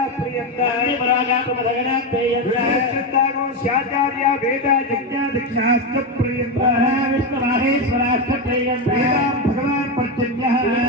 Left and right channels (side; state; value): both; normal; correlation 0.11